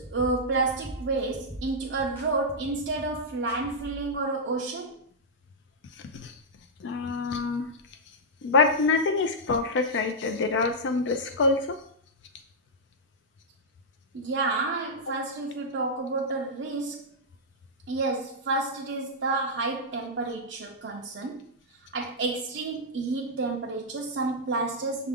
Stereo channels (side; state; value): both; normal; correlation -0.08